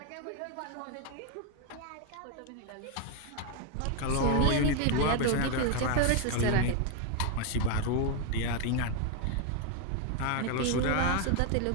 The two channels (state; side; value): different; both; correlation 0.01